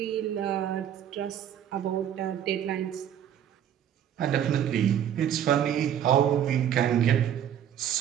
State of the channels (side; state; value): left; quieter; 9.8 dB